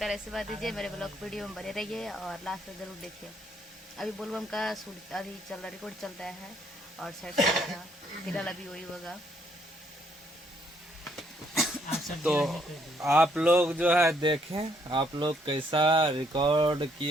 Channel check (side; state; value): both; normal; correlation 0.69